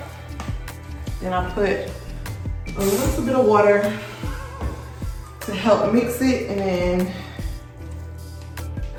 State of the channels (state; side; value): identical; both; correlation 1.00